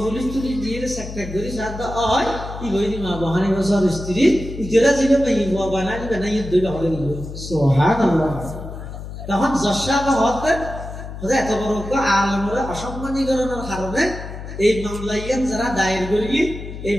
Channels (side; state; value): left; noise; hum, 10 dB below the sound